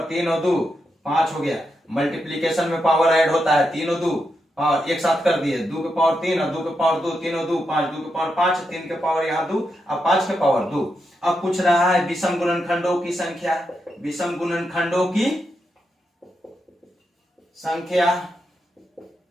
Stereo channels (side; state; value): both; normal; correlation 0.84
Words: 3 और 2 5 हो गया। मल्टीप्लीकेशन में पावर ऐड होता है, 3 और 2 पावर एक साथ कर दिए, 2 के पावर 3 और 2 के पावर 2, 3 और 2 5, 2 के पावर 5, 3 के पावर यहाँ 2 और 5 के पावर 2। अब पूछ रहा है विषम गुणनखंडों की संख्या। विषम गुणनखंडों की संख्या,